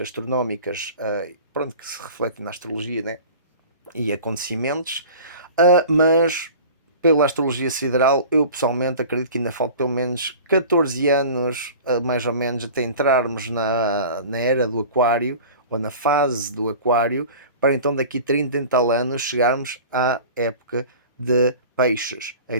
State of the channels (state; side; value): inverted; both; correlation -0.40